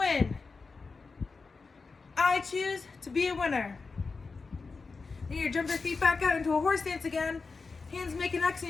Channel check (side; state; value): right; quieter; 4.4 dB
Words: I choose to be a winner. Then you jump your feet back out into a horse stance again. Hands make an X